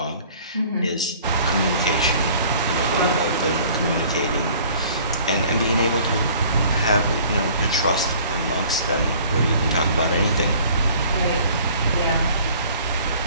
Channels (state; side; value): inverted; both; correlation -0.52